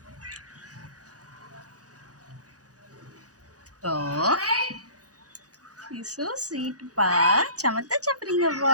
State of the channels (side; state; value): left; late; 0.67 ms